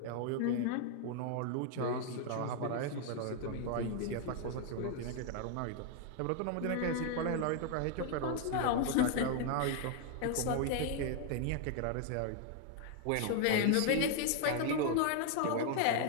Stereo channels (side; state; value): both; different; correlation 0.00